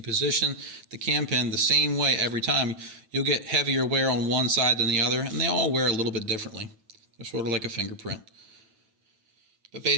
position the cam pen the same way every time, you'll get heavier wear on one side than the other, and they all wear a little bit differently. They're sort of like a fingerprint. But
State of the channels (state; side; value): late; left; 9.1 ms